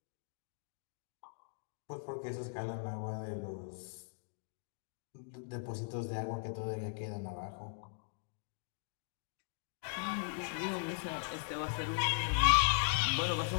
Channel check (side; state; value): right; silent; digital silence